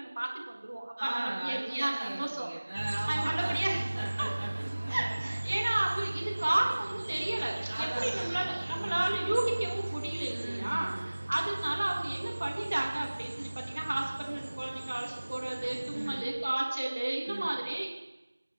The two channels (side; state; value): both; inverted; correlation -1.00